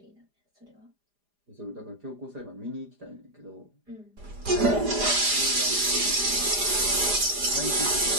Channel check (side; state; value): left; late; 4.9 ms